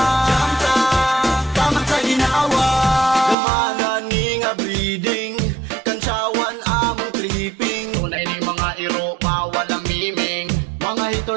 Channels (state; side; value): drops out; left; at 3.4 s